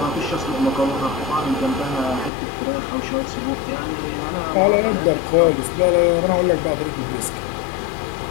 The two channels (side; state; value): right; drops out; at 2.3 s